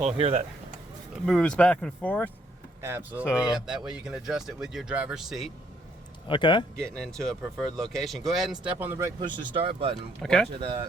here that moves back and forth. Absolutely. So- Yep. That way you can adjust it with your driver's seat, Okay. getting into a preferred location. Go ahead and step on the brake, push the start button. Okay. Watch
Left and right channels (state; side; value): normal; both; correlation 0.69